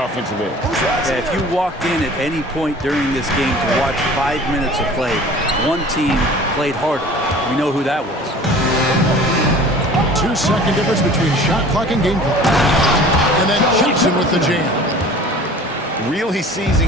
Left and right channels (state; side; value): normal; both; correlation 0.45